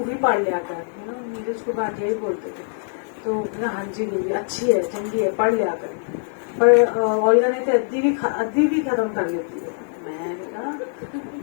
पढ़ लिया कर, नीरज को भाटिया ही बोलते थे। तो हाँ जी गुरुजी अच्छी है, चंगी है, पढ़ लिया कर। पर ओल्गा ने तो अद्धी भी खत्म कर लेती है।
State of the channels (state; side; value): silent; right; 64 dB below the other